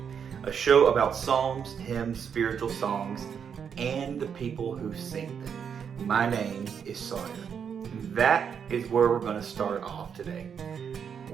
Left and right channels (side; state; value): left; quieter; 7.3 dB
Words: a show about psalms, hymns, spiritual songs, and the people who sing them. My name is Sawyer. That is where we're going to start off today.